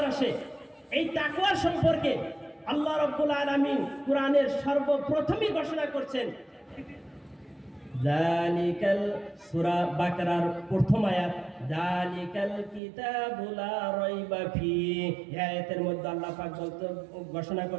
আসে? এই তাকওয়া সম্পর্কে আল্লাহ রাব্বুল আলামিন কোরআনের সর্বপ্রথমই ঘোষণা করছেন। যালিকাল, সূরা বাকারার প্রথম আয়াত, যালিকাল কিতাবু লা রাইবা ফিহি। এই আয়াতের মধ্যে আল্লাহ পাক ঘোষণা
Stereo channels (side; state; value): left; drops out; at 12.8 s